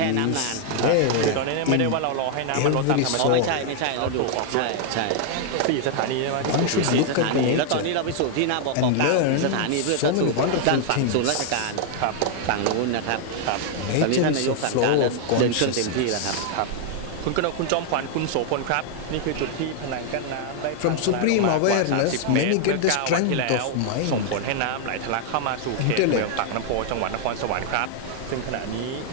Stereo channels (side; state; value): both; different; correlation 0.00